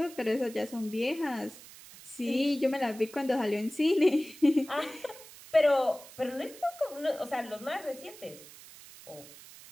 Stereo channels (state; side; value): noise; right; hiss, 18 dB below the sound